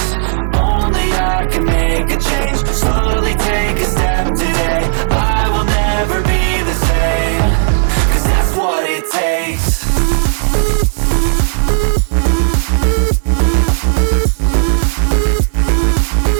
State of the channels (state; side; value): silent; left; 67 dB below the other